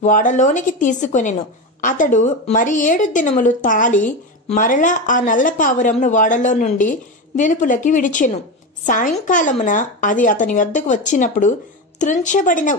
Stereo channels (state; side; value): normal; both; correlation 0.19